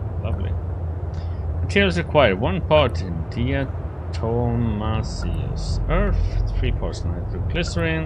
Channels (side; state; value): both; identical; correlation 1.00